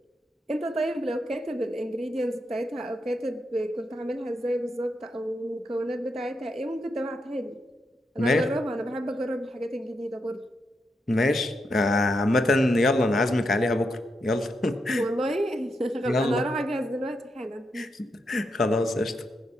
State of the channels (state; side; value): normal; both; correlation 0.83